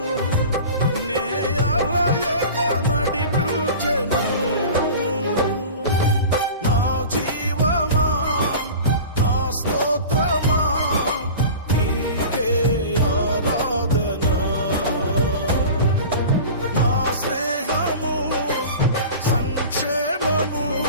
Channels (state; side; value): inverted; both; correlation -0.36